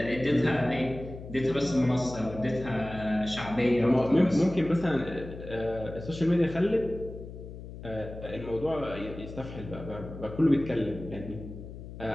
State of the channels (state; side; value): noise; left; hum, 12 dB below the sound